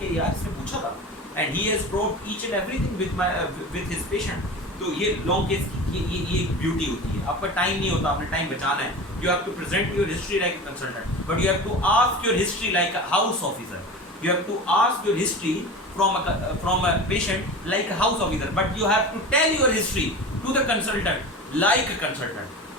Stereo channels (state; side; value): normal; both; correlation 0.32